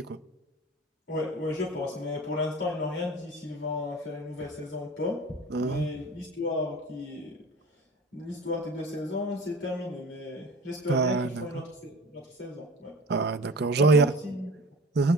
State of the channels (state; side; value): normal; both; correlation 0.39